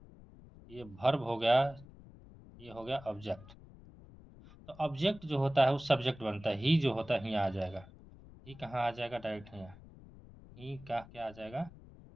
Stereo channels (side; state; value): left; noise; rumble, 20 dB below the sound